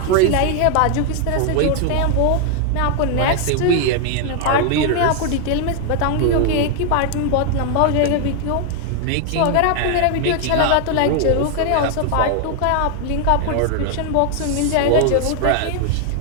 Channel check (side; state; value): both; different; correlation 0.00